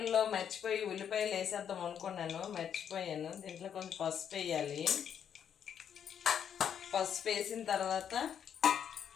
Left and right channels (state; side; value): quieter; right; 8.5 dB